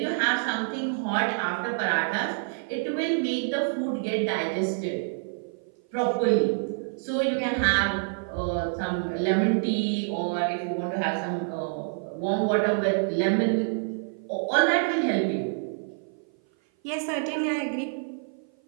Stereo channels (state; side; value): silent; left; 56 dB below the other